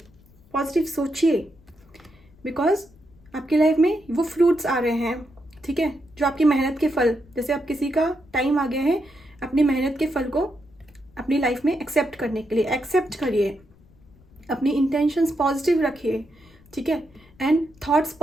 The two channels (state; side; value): noise; left; rumble, 28 dB below the sound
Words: पॉजिटिव सोचिए, बिकॉज आपकी लाइफ में वो फ्रूट्स आ रहे हैं, ठीक है, जो आपकी मेहनत के फल, जैसे अब किसी का टाइम आ गया है अपनी मेहनत के फल को अपनी लाइफ में एक्सेप्ट करने के लिए, एक्सेप्ट करिए, अपनी इंटेंशंस पॉजिटिव रखिए, ठीक है, एंड थॉट्स